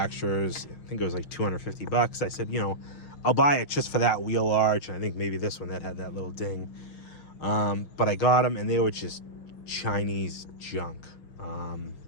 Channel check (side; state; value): right; late; 6.1 ms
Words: I think it was like $250. I said, you know, I'll buy it just for that wheel arch. And I think maybe this one that had that little ding. But I got them and they were just Chinese junk.